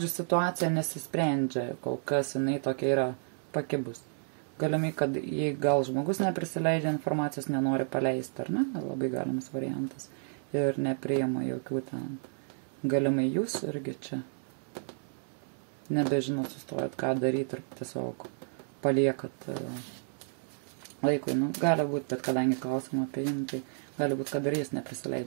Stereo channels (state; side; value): silent; left; digital silence